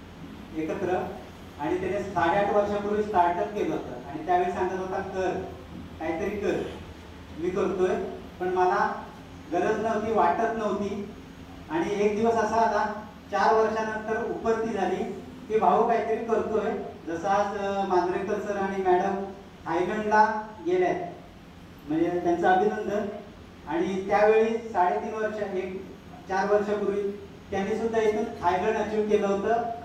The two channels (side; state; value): both; identical; correlation 1.00